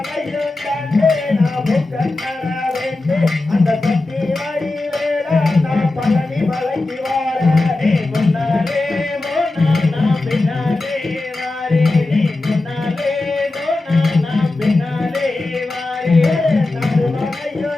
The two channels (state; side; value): quieter; right; 3.0 dB